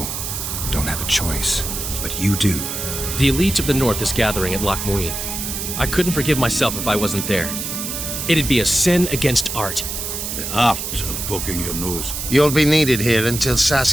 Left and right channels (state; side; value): noise; right; hiss, 5 dB below the sound